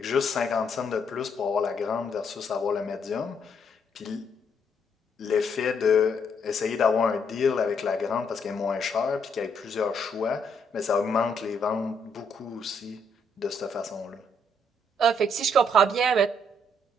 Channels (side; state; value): both; normal; correlation 0.72